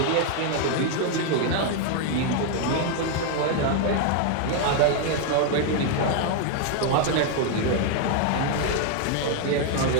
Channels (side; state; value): both; different; correlation 0.00